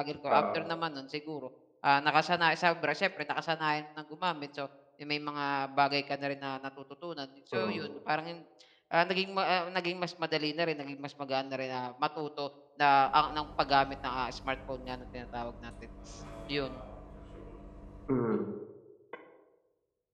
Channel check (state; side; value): identical; both; correlation 1.00